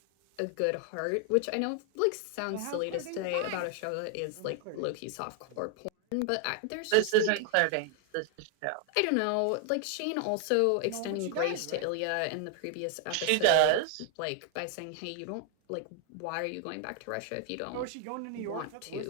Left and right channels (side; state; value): both; different; correlation 0.00